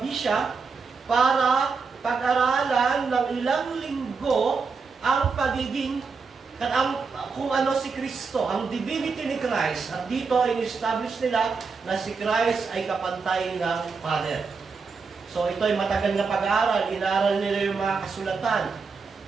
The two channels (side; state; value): left; quieter; 4.9 dB